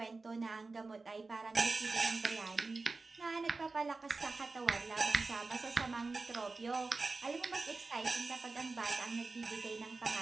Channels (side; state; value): left; quieter; 3.7 dB